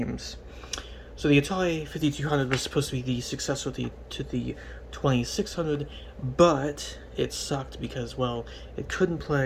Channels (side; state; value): both; identical; correlation 1.00